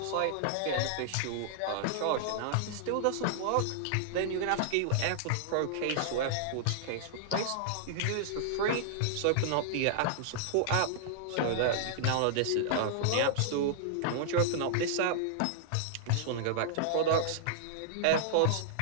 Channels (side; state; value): both; different; correlation -0.01